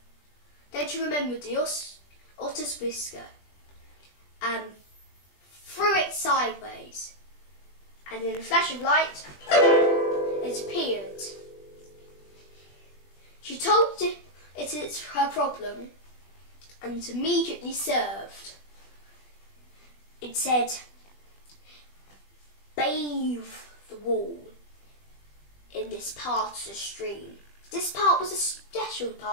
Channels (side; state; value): right; late; 20 ms